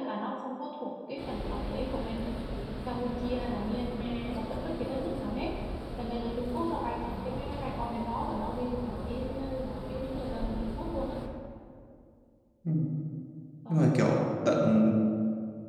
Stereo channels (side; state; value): both; identical; correlation 1.00